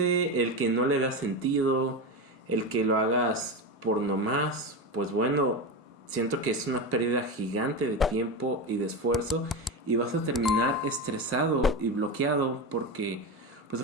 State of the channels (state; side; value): normal; both; correlation 0.18